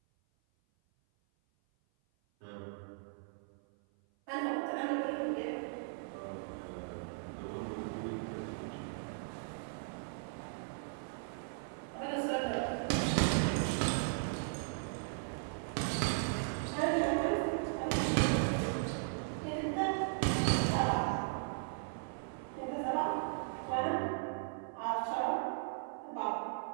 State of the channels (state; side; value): silent; left; 53 dB below the other